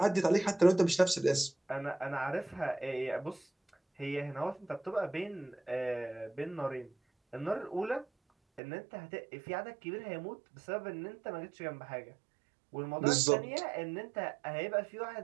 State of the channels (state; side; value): drops out; left; at 8.6 s